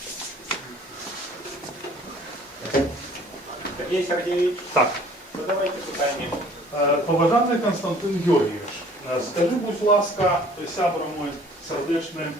Сергей Сергеевич, Так, задавайте питання. поважаний Константин Георгійович, скажи, будь ласка, сябра мой сердечний,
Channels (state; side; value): normal; both; correlation 0.53